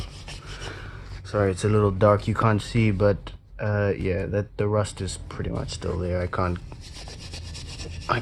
Sorry, it's a little dark, you can't see, but yeah, the rust is pretty much still there. I can't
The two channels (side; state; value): both; identical; correlation 1.00